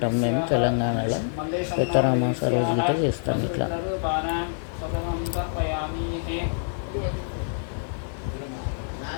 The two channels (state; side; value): silent; right; digital silence